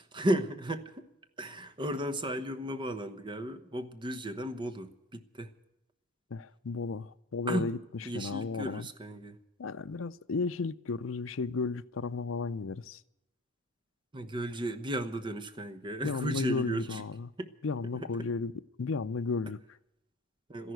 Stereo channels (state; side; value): normal; both; correlation 0.46